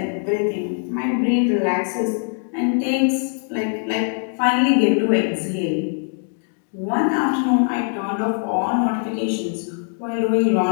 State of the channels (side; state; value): right; silent; 55 dB below the other